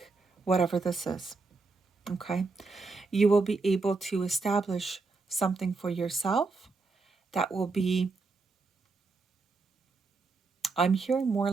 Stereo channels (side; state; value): left; quieter; 4.0 dB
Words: whatever this is. Okay? You will be able to establish something for yourself that will be, I'm hearing more